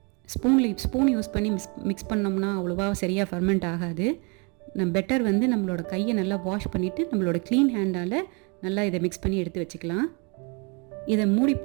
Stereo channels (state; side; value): quieter; left; 32.5 dB